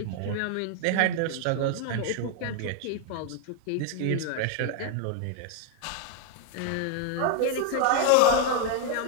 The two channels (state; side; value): different; both; correlation 0.00